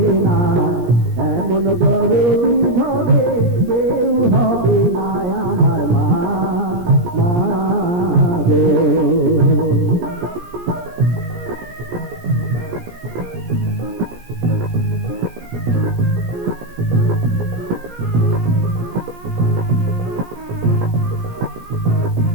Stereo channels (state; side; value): late; left; 17 ms